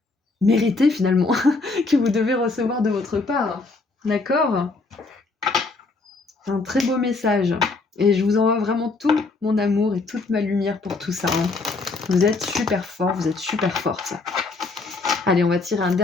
méritez finalement, que vous devez recevoir de votre part. D'accord? C'est un très beau message. Et je vous envoie vraiment tout mon amour et toute ma lumière pour tout ça. Vous êtes super fort, vous êtes super forte. Allez, on va tirer un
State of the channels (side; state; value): right; quieter; 3.7 dB